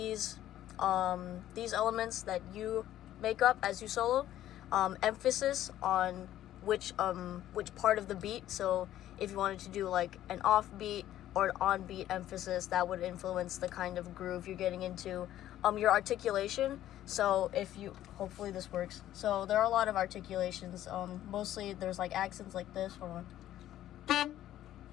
elements that you make up as you solo. Emphasis on which part of the beat. So if you wanted to do like an off beat or on-beat emphasis that would influence the kind of groove you're getting into. Your articulation, so if you, hopefully this works. So there are a lot of articulations. Mostly there's like accents like this. Hold on.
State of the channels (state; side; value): quieter; right; 12.8 dB